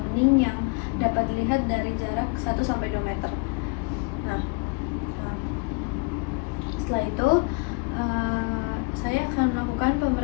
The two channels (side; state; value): right; quieter; 30.1 dB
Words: bening yang dapat dilihat dari jarak 1 sampai 2 meter. Nah, setelah itu saya akan melakukan